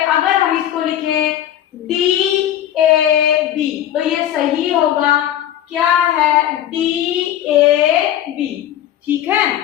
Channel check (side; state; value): right; quieter; 11.5 dB